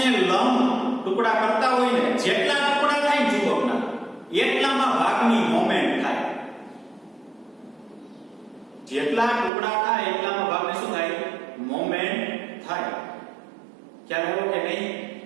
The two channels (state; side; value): drops out; left; at 9.5 s